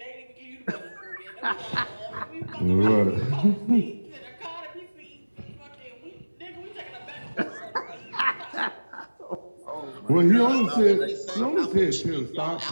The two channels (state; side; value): inverted; both; correlation -1.00